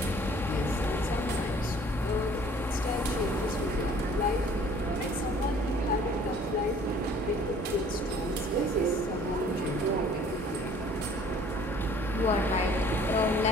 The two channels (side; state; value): both; normal; correlation 0.54